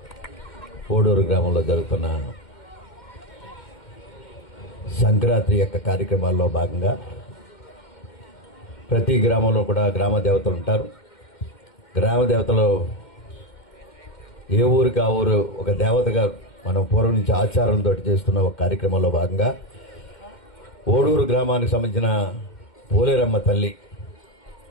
ఓడూరు గ్రామంలో జరుగుతున్న సంక్రాంతి యొక్క కార్యక్రమాల్లో భాగంగా ప్రతి గ్రామంలో కూడా గ్రామ దేవతలు ఉంటారు. గ్రామ దేవతలు ఏ ఊరికి ఆ ఊరు ఒక దేవతగా మనం పూర్వం నుంచి ఆచారంతో చేస్తున్న ఒక కార్యక్రమంలో భాగంగా ఓడూరు గ్రామానికి సంబంధించిన పోలేరమ్మ తల్లి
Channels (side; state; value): right; late; 2.1 ms